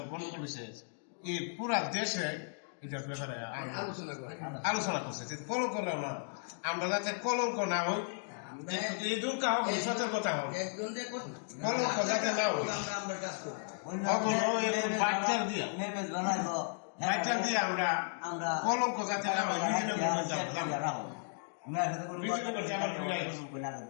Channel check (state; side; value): silent; right; digital silence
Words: গন্ডগোল হয়েছে এই পুরা দেশে এটার ব্যাপারে আলোচনা করছে। কলঙ্ক না, আমরা যাতে কলঙ্ক না হই, এই দুঃখ হোক, সতর্কতা হোক, কলঙ্ক যাতে না হই, বাচ্চার দিয়ে আমরা কলঙ্ক যাতে না